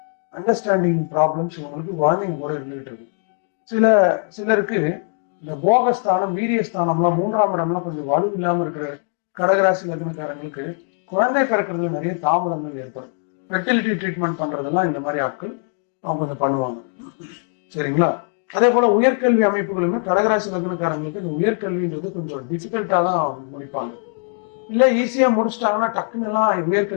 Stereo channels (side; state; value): right; silent; 55 dB below the other